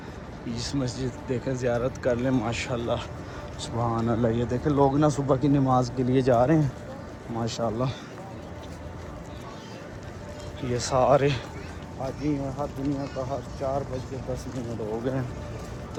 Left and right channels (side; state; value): both; identical; correlation 1.00